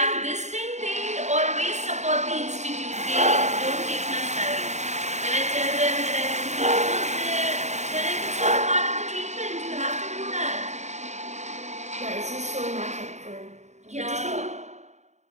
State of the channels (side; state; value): left; late; 0.34 ms